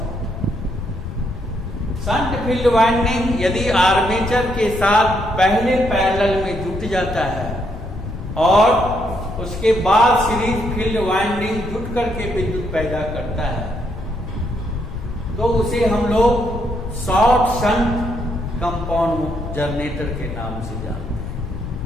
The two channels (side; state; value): left; noise; rumble, 9 dB below the sound